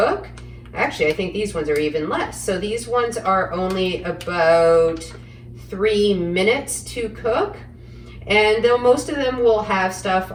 Actually, I think these ones are even less. So these ones are only about 3 minutes to cook. And though most of them will have stuff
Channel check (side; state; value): both; identical; correlation 1.00